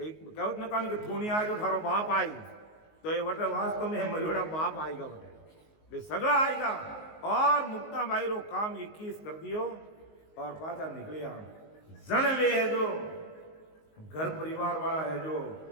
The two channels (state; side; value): late; right; 19 ms